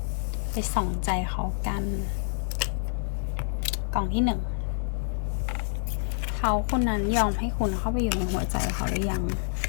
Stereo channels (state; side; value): silent; right; digital silence